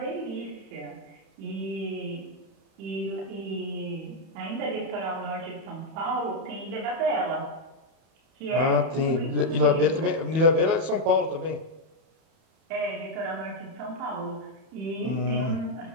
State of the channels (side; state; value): left; late; 31 ms